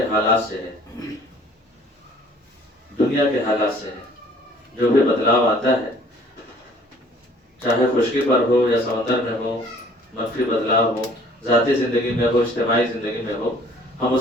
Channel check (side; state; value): both; normal; correlation 0.55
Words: حالات سے ہے، دنیا کے حالات سے ہے۔ جو بھی بدلاؤ آتا ہے، چاہے خشکی پر ہو یا سمندر میں ہو، منفی بدلاؤ ہو، ذاتی زندگی میں ہو، اجتماعی زندگی میں ہو، ہم